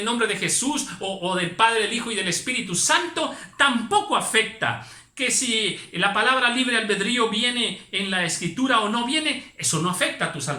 nombre de Jesús o del Padre, del Hijo y del Espíritu Santo, tampoco afecta. Que si la palabra libre albedrío viene en la escritura o no viene, eso no afecta a tu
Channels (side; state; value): both; identical; correlation 1.00